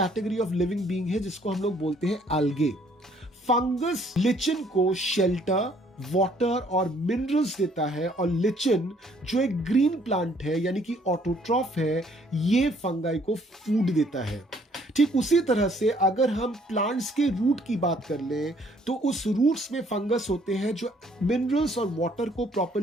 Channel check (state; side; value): normal; both; correlation 0.63